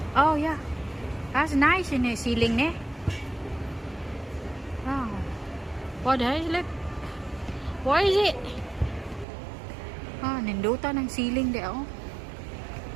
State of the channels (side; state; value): left; drops out; at 9.2 s